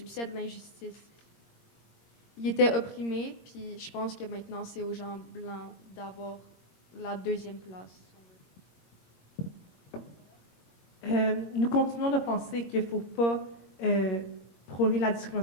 de l'injustice? Ils étaient opprimés, puis je pense que maintenant, c'est aux gens blancs d'avoir la deuxième place. Nous continuons de penser qu'il ne faut pas prôner la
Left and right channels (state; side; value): late; right; 21 ms